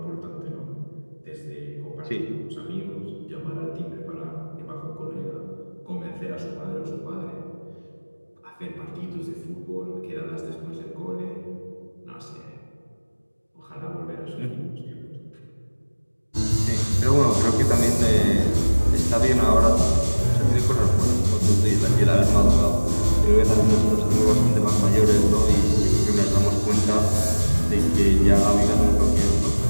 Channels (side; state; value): both; inverted; correlation -1.00